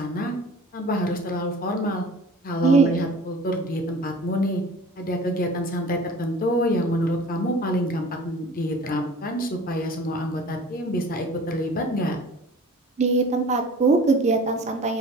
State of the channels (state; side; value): normal; both; correlation 0.44